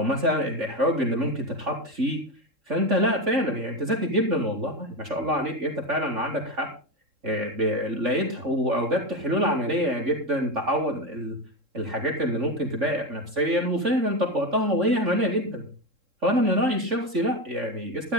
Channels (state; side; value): late; left; 3.7 ms